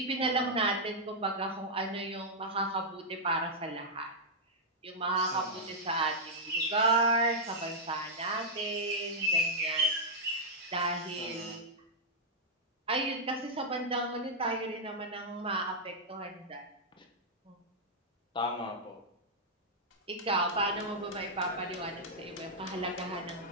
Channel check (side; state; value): both; normal; correlation -0.07